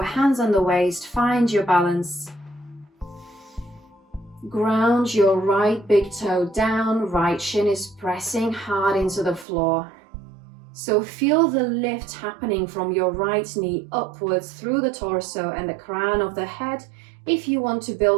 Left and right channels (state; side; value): drops out; left; at 9.5 s